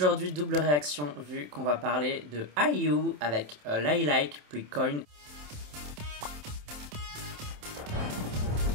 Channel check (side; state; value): left; late; 27 ms